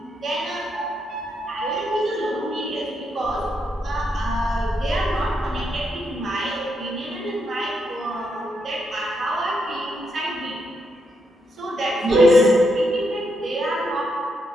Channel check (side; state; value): both; normal; correlation 0.80